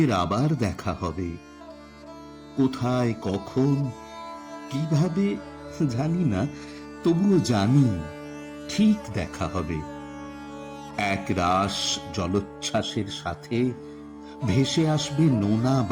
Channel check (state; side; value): identical; both; correlation 1.00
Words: আবার দেখা হবে। কোথায়, কখন, কিভাবে জানি না, তবুও জানি ঠিক দেখা হবে। এক রাস জলোচ্ছ্বাসের সাথে ভেসে আসবে নোনা